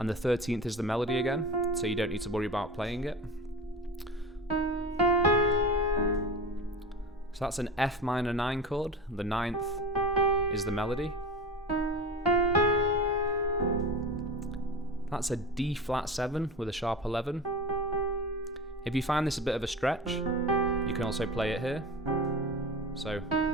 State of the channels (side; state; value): both; normal; correlation 0.31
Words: the 13th is the melody again, so you don't need to worry about playing it. So that's an F minor 9 chord, the 9th is the melody. That's a D flat 7 with a sharp 11. If you find this a bit of a stretch, you can also play it here. So,